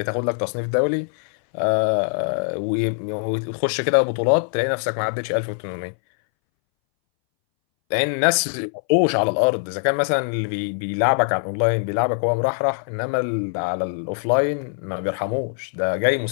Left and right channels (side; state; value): right; silent; 62 dB below the other